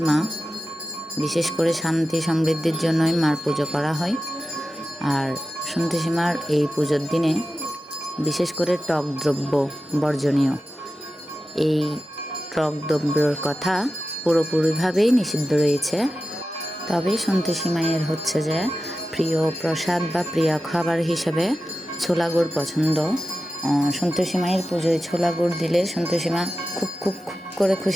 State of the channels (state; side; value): normal; both; correlation 0.93